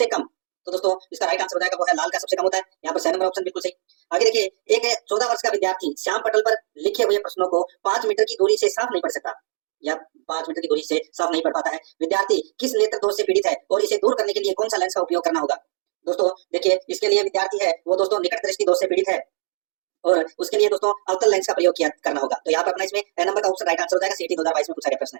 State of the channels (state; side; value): silent; left; 64 dB below the other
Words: कम, तो दोस्तों इसका राइट आंसर हो जाएगा वो है लाल का सबसे कम होता है। यहाँ पर 6 नंबर ऑप्शन बिल्कुल सही। आगे देखिए, एक 14 वर्ष का विद्यार्थी श्याम पटल पर लिखे हुए प्रश्नों को 5 मीटर की दूरी से साफ नहीं पढ़ सकता या 5 मीटर की दूरी से साफ नहीं पढ़ पाता है। विद्यार्थी किस नेत्र दोष से पीड़ित है और इसे दूर करने के लिए कौन सा लेंस का उपयोग करना होगा। दोस्तों देखिए, इसके लिए विद्यार्थी है वो दोस्तों निकट दृष्टि दोष से पीड़ित है और उसके लिए दोस्तों अवतल लेंस का प्रयोग करना होगा। तो यहाँ पर अपना इसमें ए नंबर का ऑप्शन राइट आंसर हो जाएगा। सीटी 2022 में पूछा गया प्रश्न